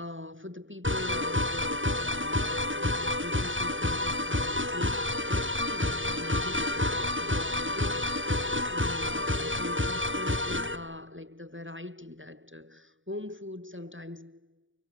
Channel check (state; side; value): late; left; 0.57 ms